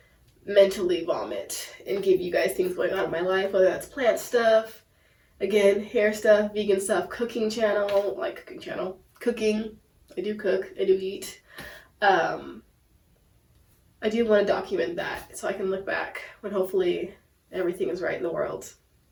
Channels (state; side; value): identical; both; correlation 1.00